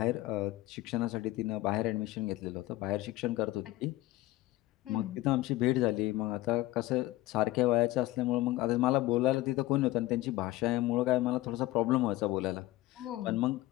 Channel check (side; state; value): right; quieter; 17.4 dB